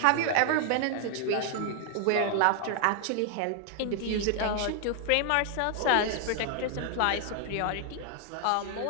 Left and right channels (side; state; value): both; different; correlation 0.00